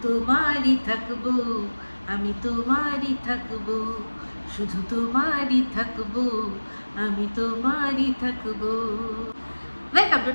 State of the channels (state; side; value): inverted; both; correlation -1.00